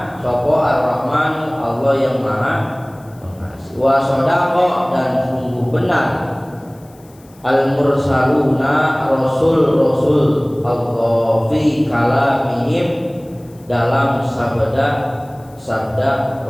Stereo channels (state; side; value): noise; left; hiss, 29 dB below the sound